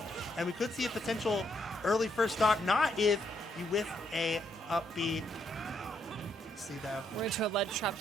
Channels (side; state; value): both; normal; correlation 0.75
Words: And we could see a potential early first stock, not if you whiff a up B. see, though. We're into a lead trap